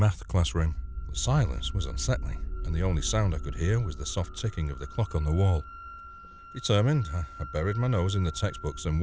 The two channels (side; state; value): both; identical; correlation 1.00